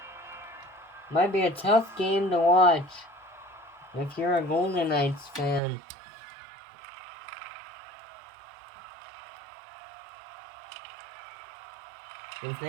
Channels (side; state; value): left; drops out; at 5.6 s